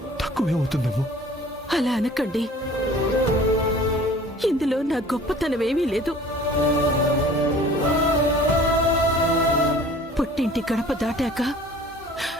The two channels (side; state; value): both; normal; correlation 0.48